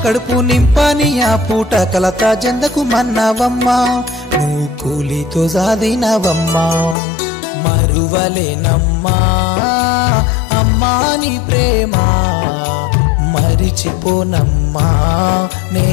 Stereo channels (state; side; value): drops out; right; at 7.0 s